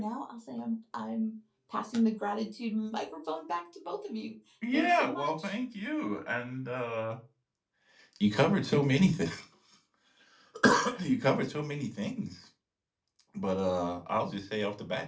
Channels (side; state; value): both; identical; correlation 1.00